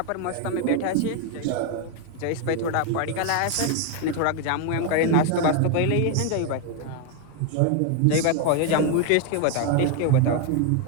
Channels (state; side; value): different; both; correlation 0.01